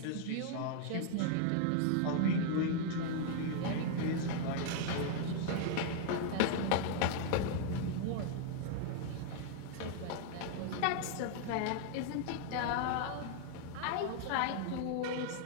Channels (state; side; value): different; both; correlation 0.00